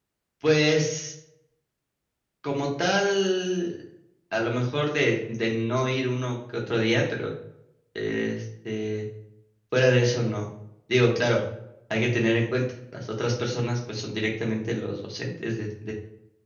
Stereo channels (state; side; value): identical; both; correlation 1.00